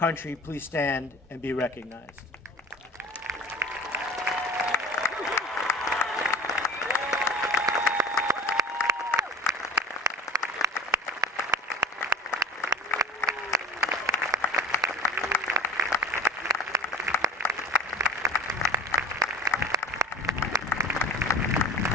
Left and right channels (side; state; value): both; normal; correlation 0.37